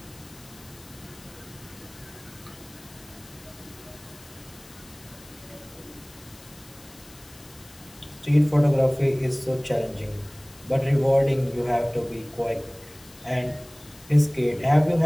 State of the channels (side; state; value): left; noise; hiss, 23 dB below the sound